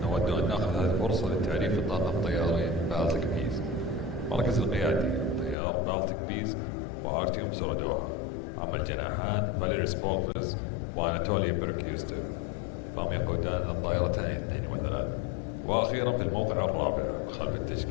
نود أن نأخذ هذه الفرصة للتعريف الطاقم الطياري بالتيك بيز. مركز القيادي طيار بالتيك بيز وأرتيوم سولودوها. أما الجناحان فاليري سبولفز وأناتولي بيركيوستوف فهم يقودان الطائرتين 2 و3. وأخيرا في الموقع الرابع خلف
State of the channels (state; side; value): drops out; right; at 5.6 s